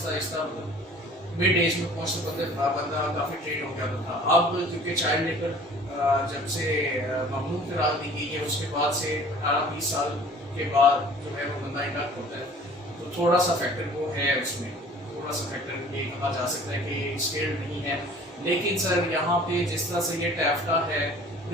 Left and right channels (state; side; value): normal; both; correlation 0.49